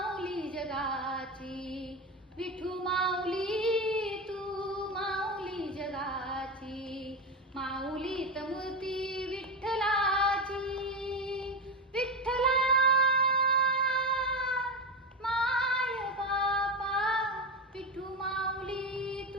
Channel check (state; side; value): normal; both; correlation 0.15